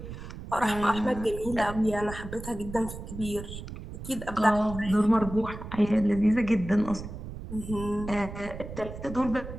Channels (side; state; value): right; noise; rumble, 10 dB below the sound